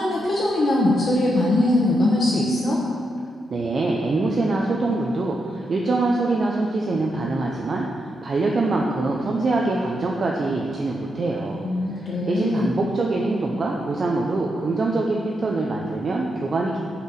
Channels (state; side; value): normal; both; correlation 0.83